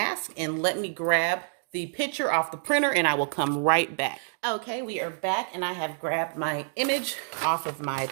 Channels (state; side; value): silent; left; 60 dB below the other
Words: and let me grab the picture off the printer and I will come right back. Okay, we are back and I have grabbed my image off of my